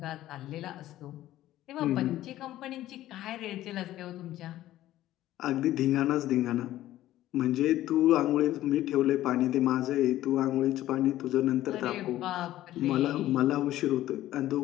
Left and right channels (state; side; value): quieter; right; 14.3 dB